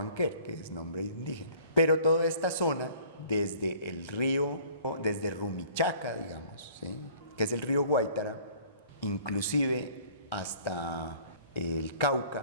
que es nombre indígena. Pero toda esta zona, desde el río, desde Rumichaca, digamos, ¿sí? Que es el río Guaitara, inclusive hasta el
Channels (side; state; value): both; inverted; correlation -0.52